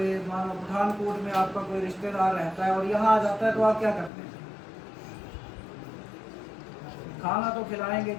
मानो पठानकोट में आपका कोई रिश्तेदार रहता है और यहाँ आ जाता है, तो आप क्या करते हैं? खाना तो खिलाएंगे,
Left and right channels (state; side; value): drops out; right; at 4.1 s